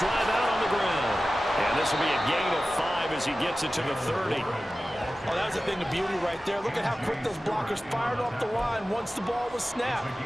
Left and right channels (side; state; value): both; normal; correlation 0.95